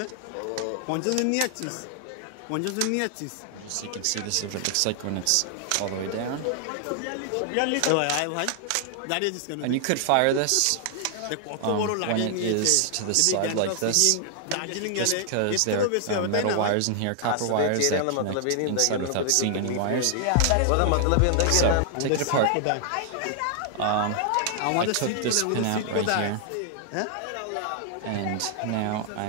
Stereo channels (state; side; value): different; both; correlation 0.00